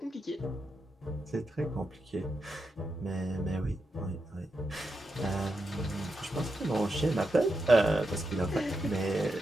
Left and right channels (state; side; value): normal; both; correlation 0.86